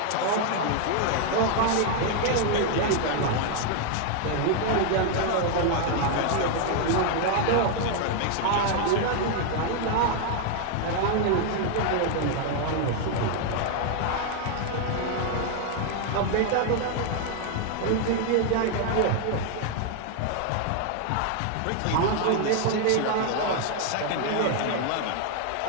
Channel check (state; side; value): different; both; correlation 0.00